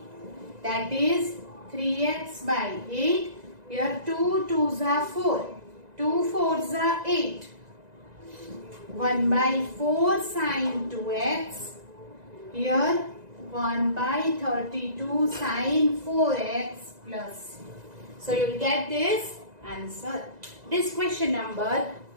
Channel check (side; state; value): left; late; 2.0 ms